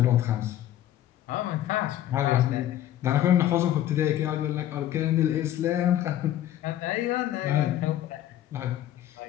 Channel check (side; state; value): right; quieter; 12.3 dB